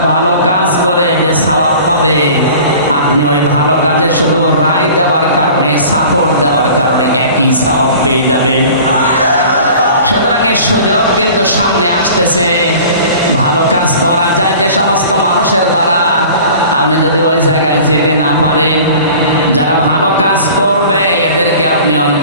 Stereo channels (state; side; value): inverted; both; correlation -0.44